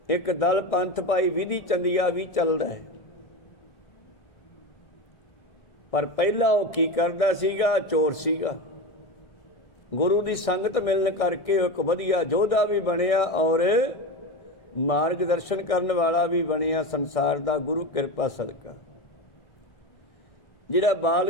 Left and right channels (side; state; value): right; late; 1.6 ms